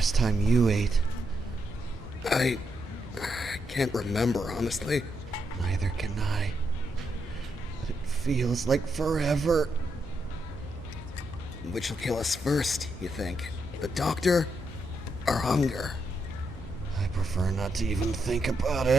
time you ate? I can't remember, honestly. Neither can I. But it feels like forever. Which will kill us first, you think? The doctor or hunger? I prefer not to even think about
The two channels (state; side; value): normal; both; correlation 0.81